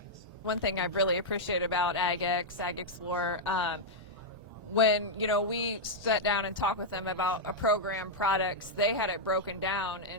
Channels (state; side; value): normal; both; correlation -0.04